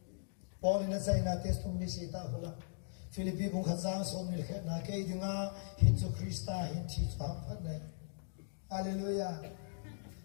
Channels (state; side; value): silent; right; digital silence